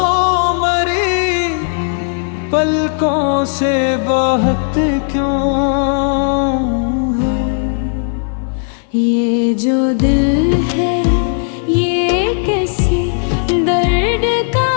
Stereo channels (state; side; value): silent; right; 58 dB below the other